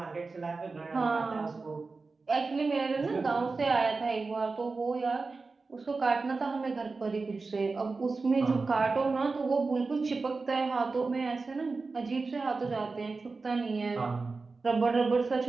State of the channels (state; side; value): quieter; left; 4.0 dB